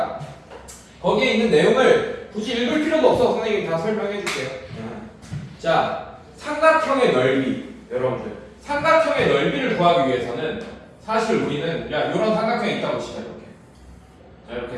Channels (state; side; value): identical; both; correlation 1.00